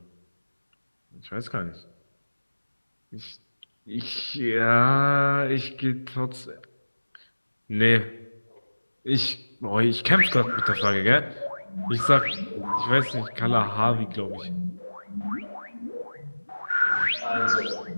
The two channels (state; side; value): inverted; both; correlation -1.00